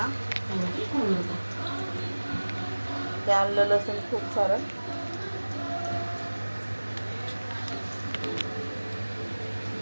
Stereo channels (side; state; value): both; inverted; correlation -1.00